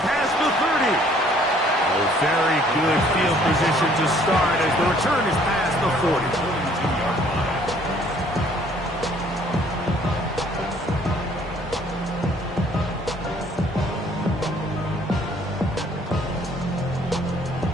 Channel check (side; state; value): both; normal; correlation 0.59